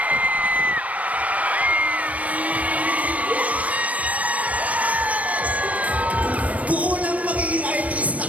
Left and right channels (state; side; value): late; left; 0.069 ms